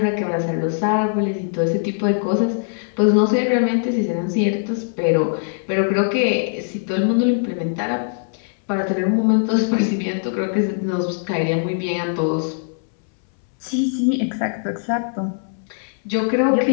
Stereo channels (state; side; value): silent; right; 65 dB below the other